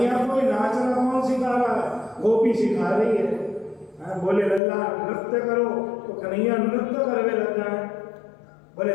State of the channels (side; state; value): right; drops out; at 4.6 s